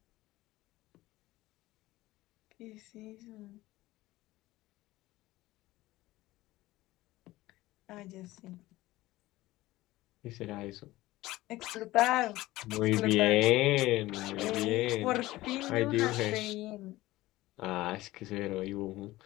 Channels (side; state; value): right; quieter; 17.8 dB